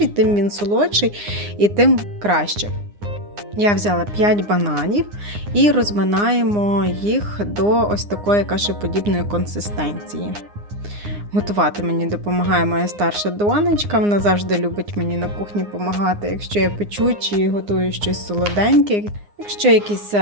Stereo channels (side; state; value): left; late; 9.7 ms